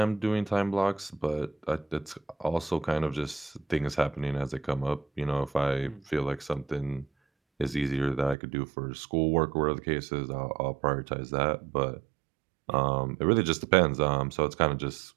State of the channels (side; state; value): left; drops out; at 8.3 s